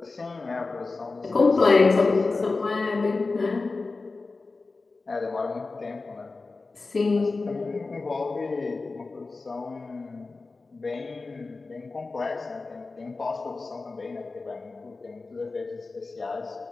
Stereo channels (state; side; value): quieter; right; 3.8 dB